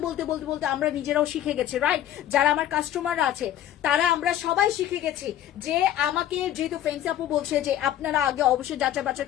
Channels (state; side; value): quieter; right; 11.9 dB